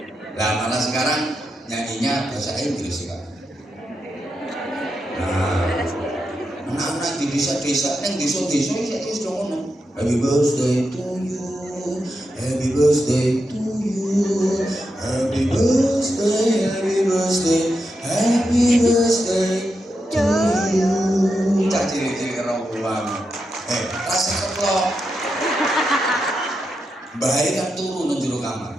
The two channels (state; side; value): normal; both; correlation 0.86